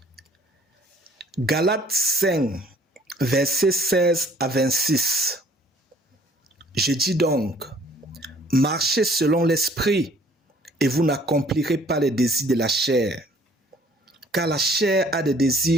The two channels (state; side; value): normal; both; correlation 0.57